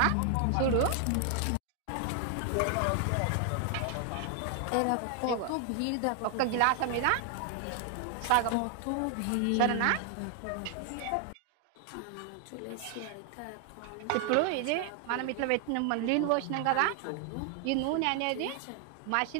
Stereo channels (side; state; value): both; different; correlation 0.00